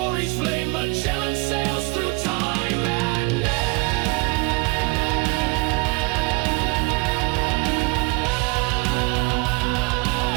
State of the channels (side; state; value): left; quieter; 27.1 dB